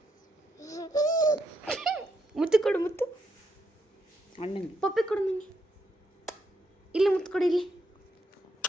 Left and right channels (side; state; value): both; normal; correlation 0.79